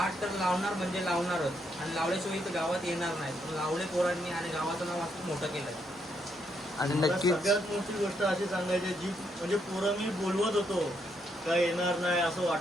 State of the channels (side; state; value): both; normal; correlation 0.76